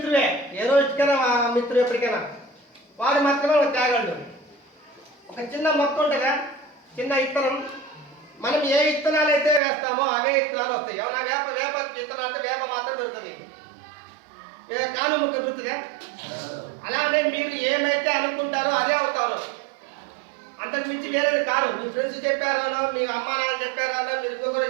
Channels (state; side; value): drops out; left; at 9.6 s